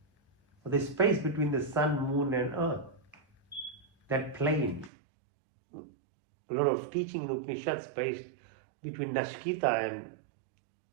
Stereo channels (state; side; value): drops out; left; at 4.9 s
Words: For the space between the sun, moon and earth, that plane, a lot of teaching in Upanishads based between Nashkita and